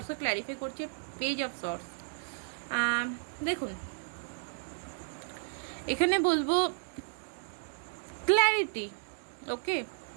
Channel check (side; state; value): left; silent; digital silence